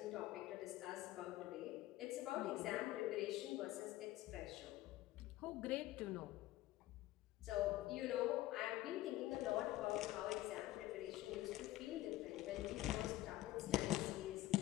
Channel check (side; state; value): right; quieter; 16.0 dB